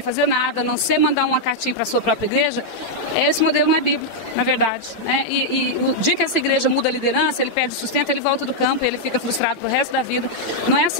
fazer nada, a não ser mandar uma cartinha para a sua própria igreja, esse modelo não é bíblico, na verdade, né? E o dia que essa igreja muda a liderança, ele perde o sustento, ele volta do campo e ele fica frustrado pro resto da vida. Não é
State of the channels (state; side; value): late; right; 8.9 ms